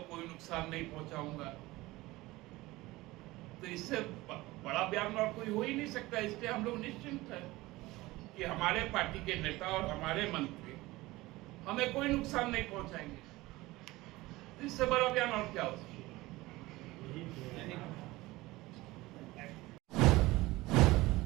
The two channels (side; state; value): left; quieter; 19.6 dB